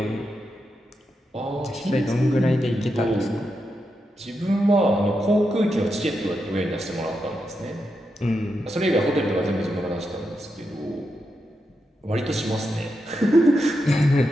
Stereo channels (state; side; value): normal; both; correlation 0.86